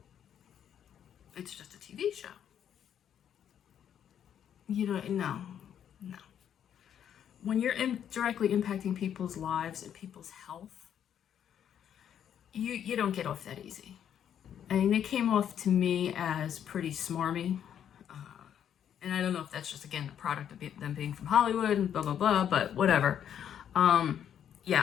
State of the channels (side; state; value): right; quieter; 9.3 dB